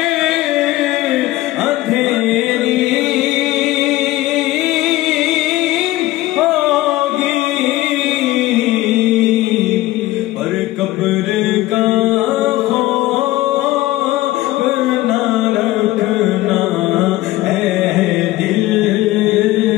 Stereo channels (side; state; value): right; quieter; 17.2 dB